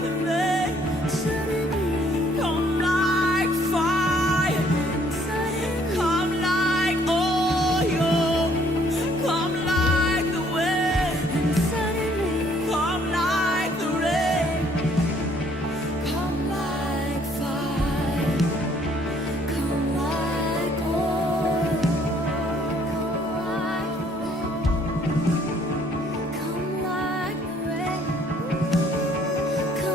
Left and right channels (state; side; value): normal; both; correlation 0.63